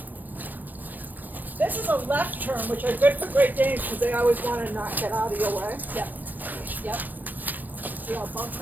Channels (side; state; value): left; late; 0.088 ms